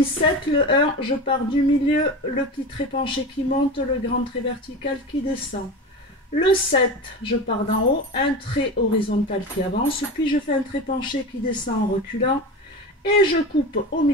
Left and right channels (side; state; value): both; normal; correlation 0.28